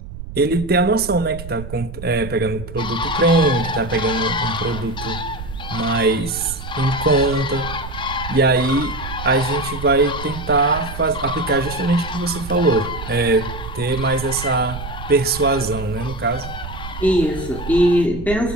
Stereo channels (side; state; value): right; noise; rumble, 11 dB below the sound